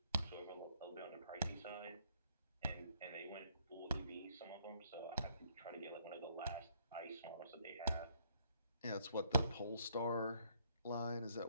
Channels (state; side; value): inverted; both; correlation -0.67